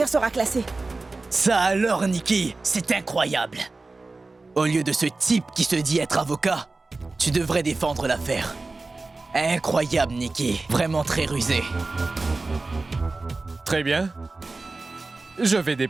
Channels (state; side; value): quieter; left; 3.5 dB